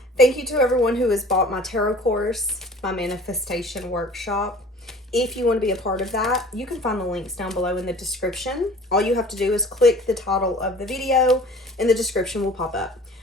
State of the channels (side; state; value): both; normal; correlation 0.47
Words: Thank you to everyone who has bought my tarot course, my manifestation workshop. If you want to be a part of that, you can find the links down below in the description. All you have to do is click the title of the video and the description will pop up.